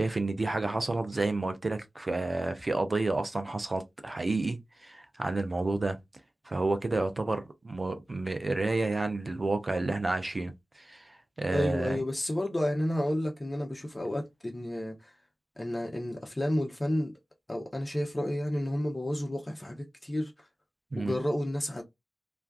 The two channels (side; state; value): both; normal; correlation 0.96